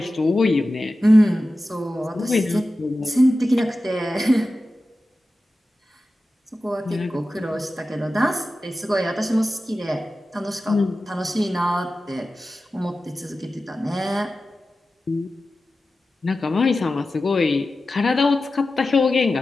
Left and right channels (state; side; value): normal; both; correlation 0.94